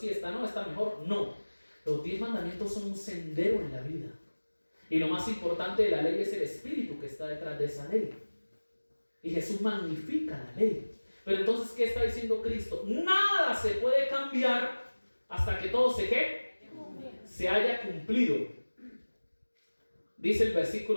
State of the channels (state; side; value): inverted; both; correlation -1.00